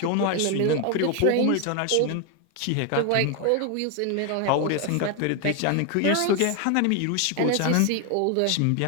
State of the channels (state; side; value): different; both; correlation 0.01